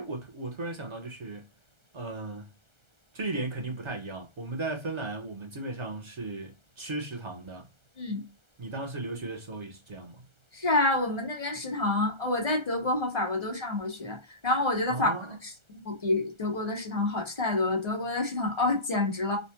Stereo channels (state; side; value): late; left; 1.3 ms